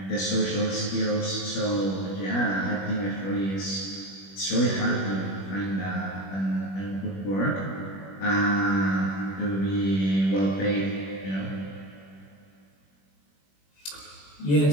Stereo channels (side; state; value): right; late; 21 ms